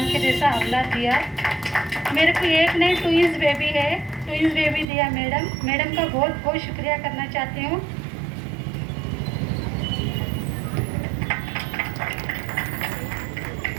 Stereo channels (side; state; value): left; drops out; at 4.9 s